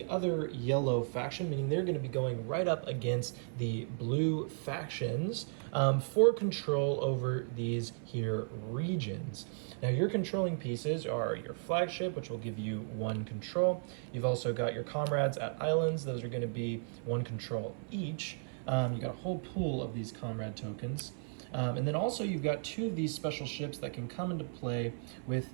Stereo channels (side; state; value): left; silent; 54 dB below the other